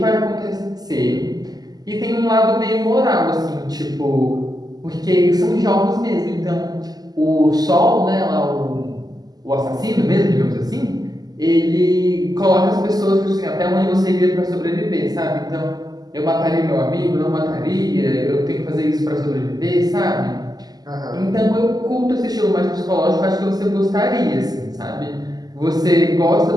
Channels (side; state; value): left; late; 0.19 ms